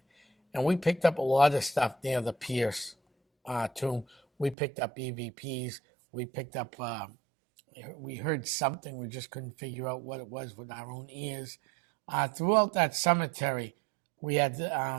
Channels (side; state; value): left; drops out; at 4.5 s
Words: And we picked up a lot of stuff near the Pierce tomb. We picked up EVPs. We picked up, we heard something. We just couldn't figure out what it was with our own ears. Throughout that cemetery, we had